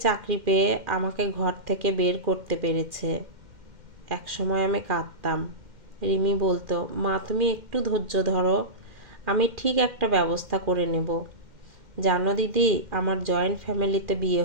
চাকরি পেয়ে আমাকে ঘর থেকে বের করতে পেরেছে। এক সময় আমি কাঁদতাম। রিমি বলতো, মা তুমি একটু ধৈর্য ধরো, আমি ঠিক একটা ব্যবস্থা করে নেব। জানো দিদি, আমার জয়েন্ট ফ্যামিলিতে বিয়ে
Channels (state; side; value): late; left; 2.1 ms